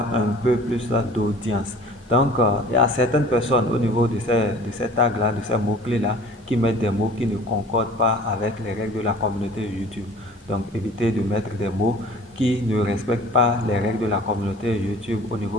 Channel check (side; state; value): both; normal; correlation 0.47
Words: un peu plus d'audience. Donc, il y a certaines personnes au niveau de ces tags-là, de ces mots-clés-là, qui mettent des mots qui ne concordent pas avec les règles de la communauté YouTube. Donc, évitez de mettre des mots qui ne respectent pas les règles de la communauté YouTube au